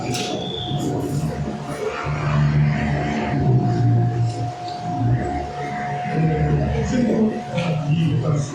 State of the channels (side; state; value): both; identical; correlation 1.00